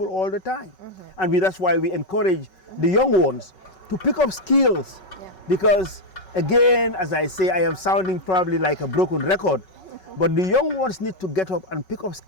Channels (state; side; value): late; right; 5.3 ms